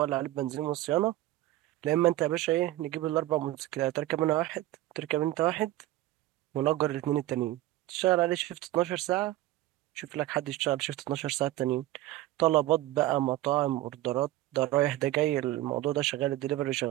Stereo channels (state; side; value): quieter; left; 16.1 dB